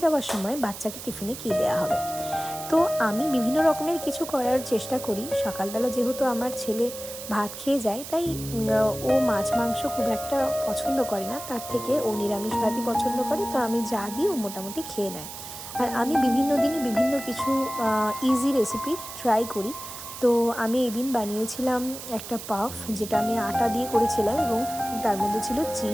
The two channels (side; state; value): right; noise; hiss, 11 dB below the sound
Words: যাওয়ার সময় বাচ্চাকে টিফিনে কী দেওয়া হবে। তো আমি বিভিন্ন রকমের কিছু করার চেষ্টা করি। সকালবেলা যেহেতু আমার ছেলে ভাত খেয়ে যায়, তাই ও মাছ মাংস খুব একটা পছন্দ করে না, তার থেকে ও নিরামিষ ভাতই পছন্দ করে। তো আমি যা দিই ও মোটামুটি খেয়ে নেয়। আর আমি বিভিন্ন দিনে বিভিন্ন কিছু ইজি রেসিপি ট্রাই করি। তো আমি এদিন বানিয়েছিলাম একটা পাফ, যেটা আমি আটা দিয়ে করেছিলাম এবং তার মধ্যে ছিল